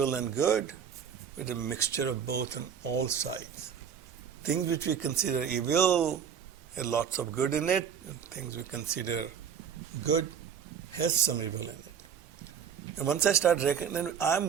and good, but a mixture of both on all sides. Things which we consider evil have lots of good in it, and things we consider good has some evil in it. And once I start recognizing, I'm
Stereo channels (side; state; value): left; quieter; 7.8 dB